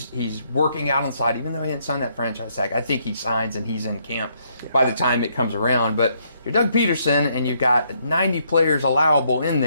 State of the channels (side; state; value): both; inverted; correlation -0.72